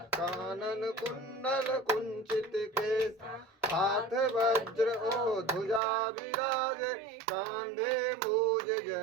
कानन कुंडल कुंचित केसा। हाथ वज्र ओ ध्वजा विराजे कांधे मूज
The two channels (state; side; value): drops out; left; at 5.8 s